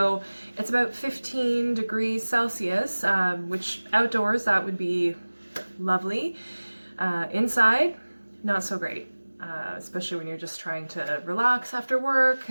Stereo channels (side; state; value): both; inverted; correlation -1.00